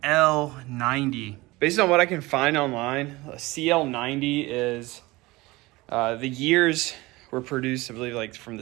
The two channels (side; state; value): left; quieter; 21.2 dB